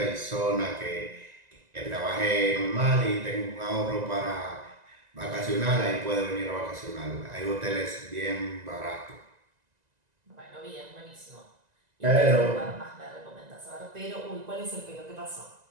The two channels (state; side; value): late; left; 2.0 ms